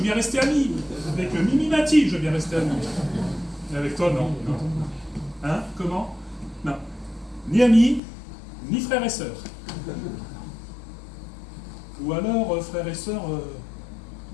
bien rester ami. Avec Mimi Mati, je veux bien rester ami. Et avec toi, non. Hein? Comment? Non. Ni amis, ni frères et sœurs. Ou alors frères et sœurs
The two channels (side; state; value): right; drops out; at 8.0 s